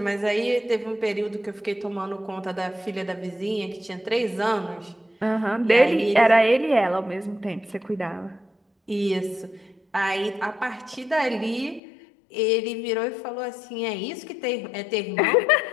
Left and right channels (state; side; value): drops out; right; at 11.8 s